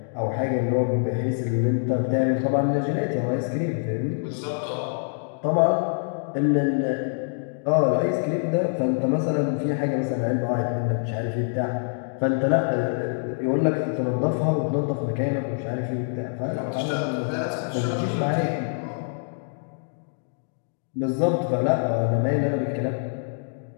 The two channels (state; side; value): silent; right; digital silence